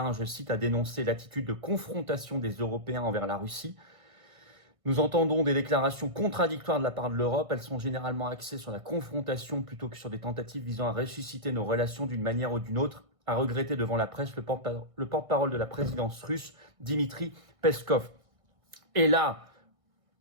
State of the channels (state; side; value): late; left; 1.6 ms